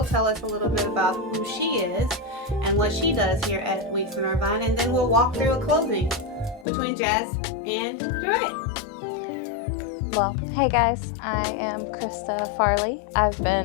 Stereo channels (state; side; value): drops out; right; at 6.7 s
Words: tell us a little bit about who she is and what she does here at Weeks in Irvine, and then we'll walk through a closing between Jazz and Jeray. Well, hey guys, I am Krista Farley. I've